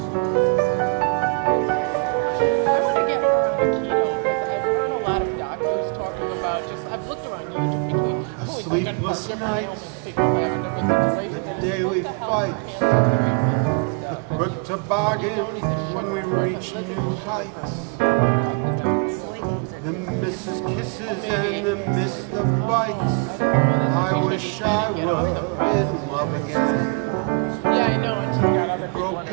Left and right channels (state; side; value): quieter; left; 36.6 dB